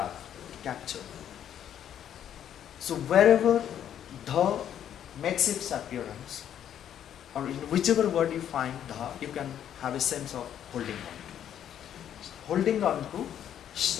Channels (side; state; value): right; quieter; 10.0 dB